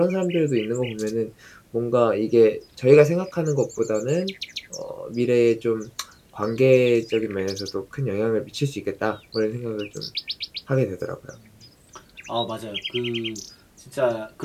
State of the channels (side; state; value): both; identical; correlation 1.00